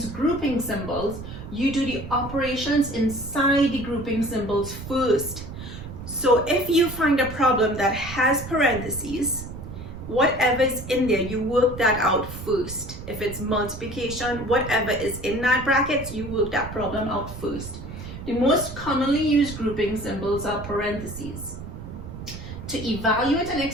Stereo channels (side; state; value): right; noise; rumble, 11 dB below the sound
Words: grouping symbols, you do the operations inside the grouping symbols first. So if you find a problem that has parentheses, whatever is in there, you work that out first. If it's multiplication, whatever is in that bracket, you work that problem out first. The most commonly used grouping symbols are parentheses. To evaluate an